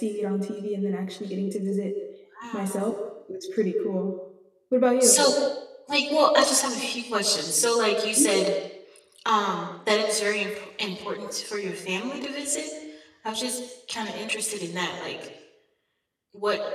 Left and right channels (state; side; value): identical; both; correlation 1.00